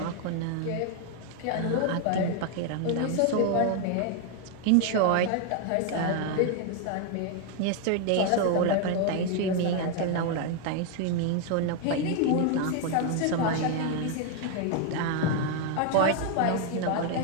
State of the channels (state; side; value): different; both; correlation 0.00